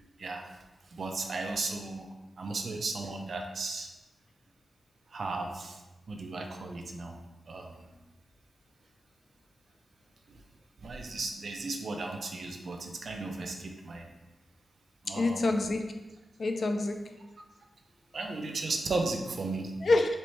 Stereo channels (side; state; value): both; normal; correlation 0.89